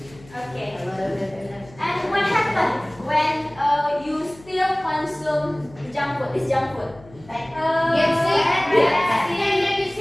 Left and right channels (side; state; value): left; noise; hum, 23 dB below the sound